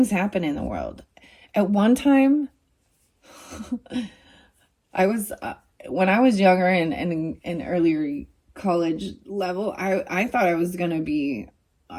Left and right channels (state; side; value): identical; both; correlation 1.00